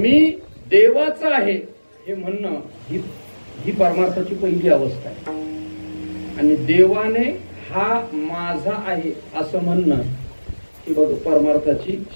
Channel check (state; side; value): inverted; both; correlation -1.00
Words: देवाचा आहे हे म्हणणं ही परमार्थाची पहिली अवस्था आहे, आणि देवाने हा माझा आहे असं म्हणणं ही बघ परमार्थाची